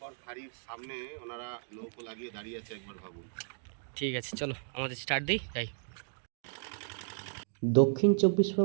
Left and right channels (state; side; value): silent; left; digital silence